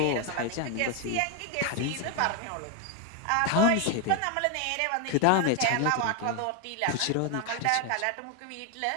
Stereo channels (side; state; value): both; different; correlation 0.01